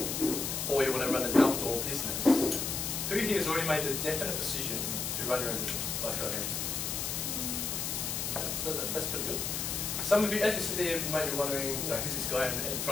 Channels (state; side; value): noise; left; hiss, 2 dB below the sound